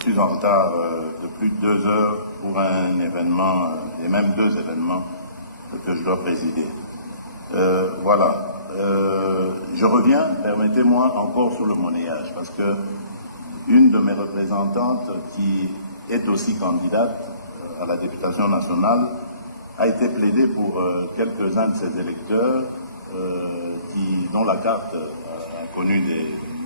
en retard de plus de 2 heures pour un événement, et même 2 événements que je dois présider. Voilà. Je reviens, permettez-moi, encore sur le monnayage, parce que une de mes représentantes, qui est aussi candidate à la députation nationale, a été plaidée pour quelques-uns de ses électeurs dont la carte a connu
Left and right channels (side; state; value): both; inverted; correlation -0.55